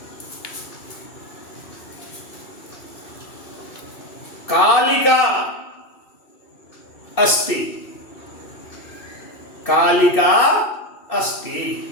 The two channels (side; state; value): right; late; 2.6 ms